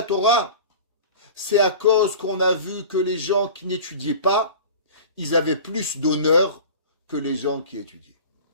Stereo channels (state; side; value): inverted; both; correlation -0.38